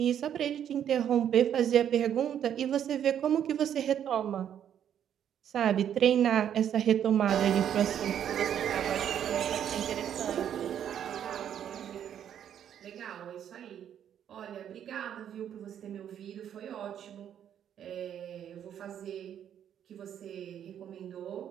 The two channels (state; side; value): quieter; left; 9.6 dB